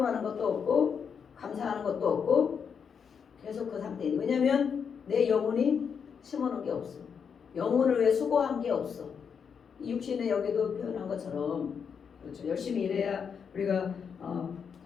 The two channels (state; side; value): quieter; right; 6.7 dB